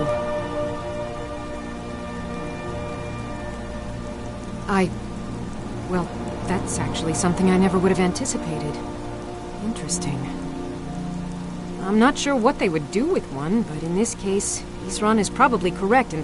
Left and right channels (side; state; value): both; identical; correlation 1.00